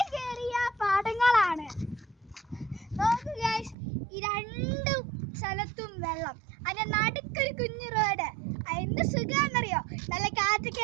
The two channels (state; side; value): drops out; left; at 3.8 s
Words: കയറിയ പാടങ്ങളാണ്. നോക്കൂ ഗൈസ്, ഈ രണ്ട് സ്ഥലത്തും വെള്ളം, അതിന്റെ നടുക്കൊരു കുഞ്ഞു റോഡ്. എന്ത് സുഖാന്നറിയോ, നല്ല കാറ്റൊക്കെ